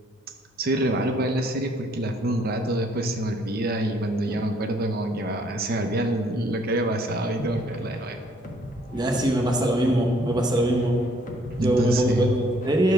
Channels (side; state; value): both; normal; correlation 0.64